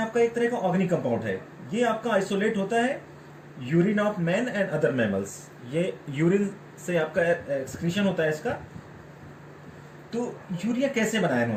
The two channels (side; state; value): both; identical; correlation 1.00